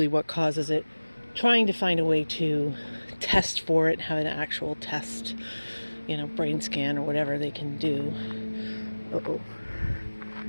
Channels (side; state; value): both; inverted; correlation -1.00